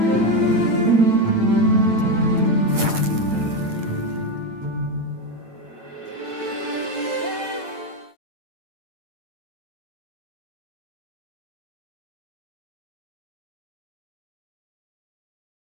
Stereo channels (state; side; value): late; left; 8.9 ms